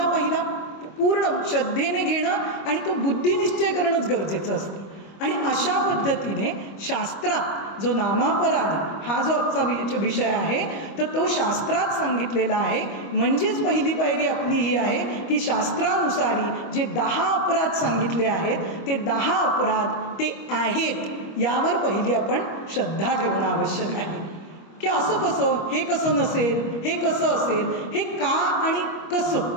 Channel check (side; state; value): right; late; 25 ms